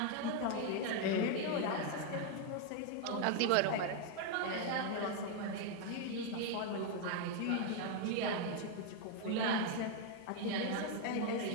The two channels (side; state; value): both; different; correlation 0.01